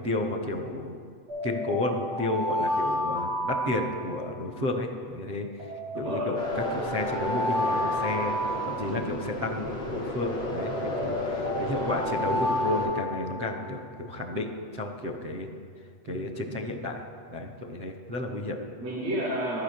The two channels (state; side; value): late; left; 8.1 ms